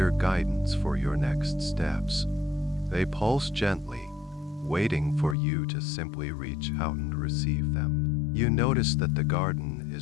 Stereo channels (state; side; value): drops out; right; at 5.4 s